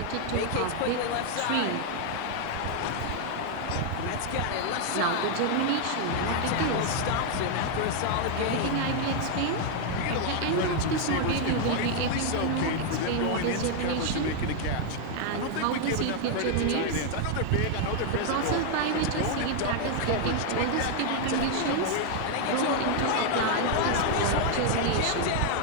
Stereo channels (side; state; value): both; different; correlation 0.00